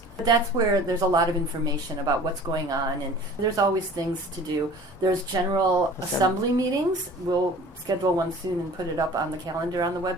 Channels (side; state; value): both; normal; correlation 0.45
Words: That's where there's a lot of information about what's going on, and there's always things to do. There's general assembly meetings. We'll schedule one soon and put it up on the calendar on the